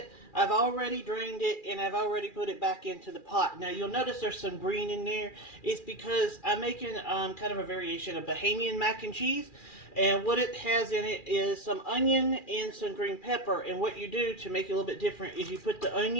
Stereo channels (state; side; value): late; right; 2.4 ms